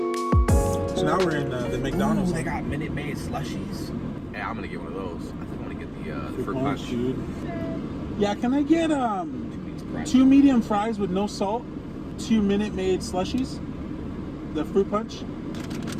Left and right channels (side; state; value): both; identical; correlation 1.00